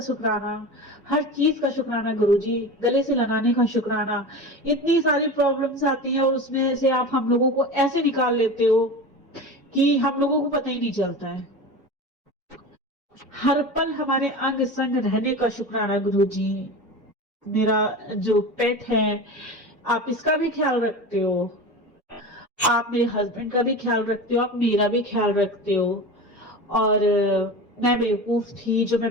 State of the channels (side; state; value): both; normal; correlation 0.29